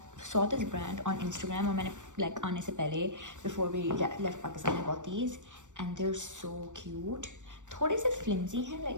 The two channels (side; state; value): left; late; 0.85 ms